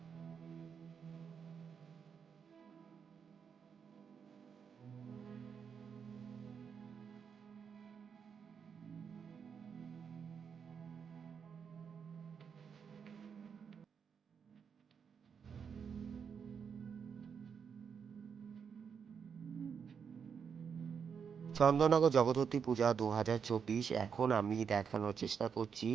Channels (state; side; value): quieter; left; 6.7 dB